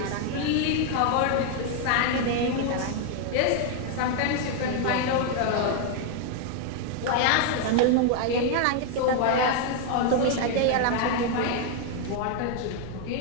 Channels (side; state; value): both; different; correlation 0.00